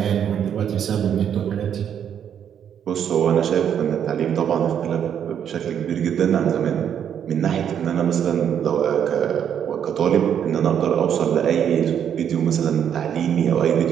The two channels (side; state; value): left; quieter; 8.8 dB